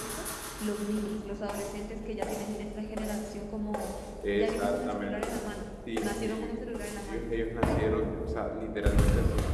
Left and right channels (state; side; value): identical; both; correlation 1.00